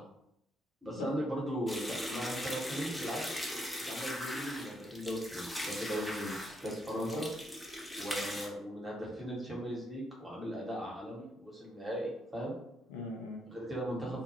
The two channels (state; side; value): normal; both; correlation 0.76